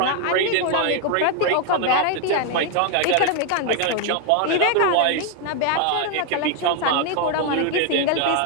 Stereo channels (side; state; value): both; different; correlation 0.00